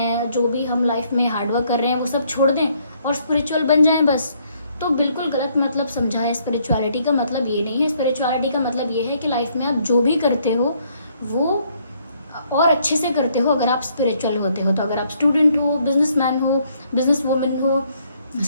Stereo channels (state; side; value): inverted; both; correlation -0.68